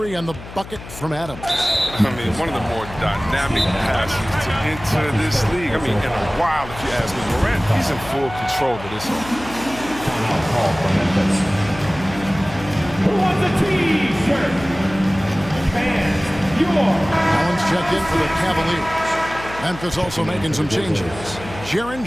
on the bucket from Adams. I mean, one of the more dynamic passes to enter this league. I mean, in a while, if you ask me. Morant, he's in full control of this one. Who wants a T-shirt? Fans, Allen's checked in for the Cavaliers. Memphis also making some changes. Jaren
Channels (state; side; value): noise; left; hum, 14 dB below the sound